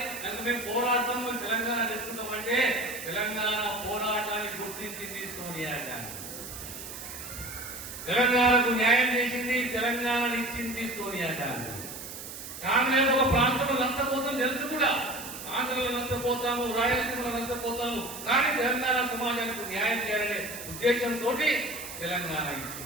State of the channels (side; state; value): right; noise; hiss, 10 dB below the sound